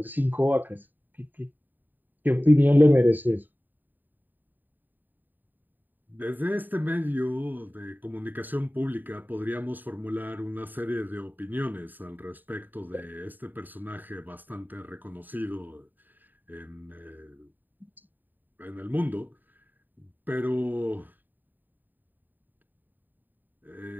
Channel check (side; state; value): left; late; 0.089 ms